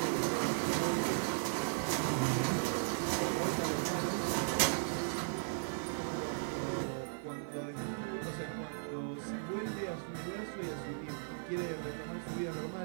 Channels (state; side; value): silent; left; 53 dB below the other